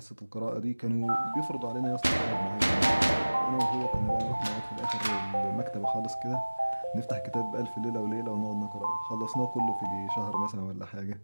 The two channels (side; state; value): both; inverted; correlation -1.00